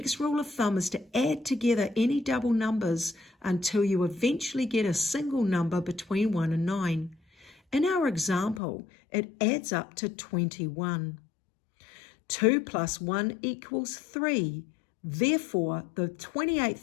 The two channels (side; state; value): right; drops out; at 8.6 s